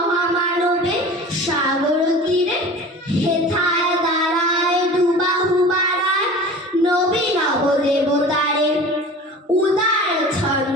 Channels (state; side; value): normal; both; correlation 0.39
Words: সাগর তীরে। হেথায় দাঁড়ায় দুবাহু বাড়ায় নবী নবদেবতারে, উদার